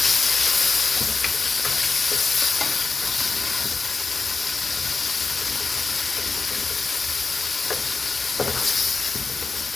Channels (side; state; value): right; quieter; 4.2 dB